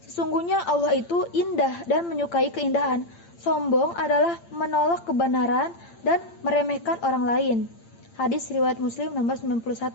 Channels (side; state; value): right; late; 8.8 ms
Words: sesungguhnya Allah itu indah dan menyukai keindahan. Sombong adalah menolak kebenaran dan meremehkan orang lain. Hadis riwayat Muslim nomor